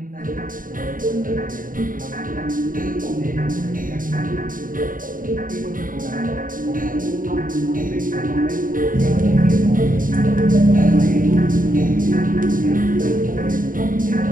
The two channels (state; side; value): late; left; 0.40 ms